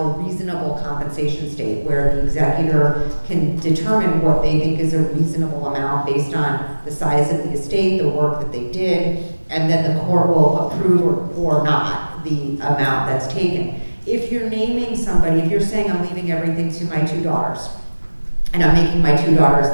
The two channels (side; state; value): both; inverted; correlation -1.00